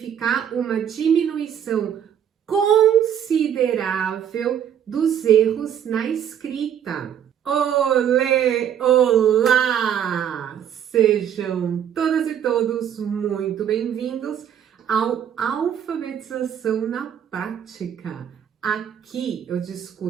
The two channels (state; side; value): quieter; left; 9.2 dB